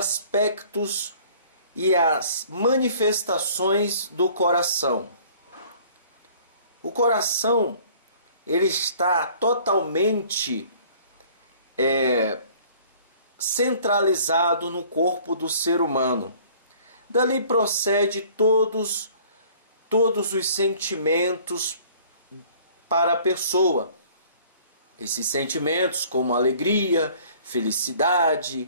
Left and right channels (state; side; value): inverted; both; correlation -0.53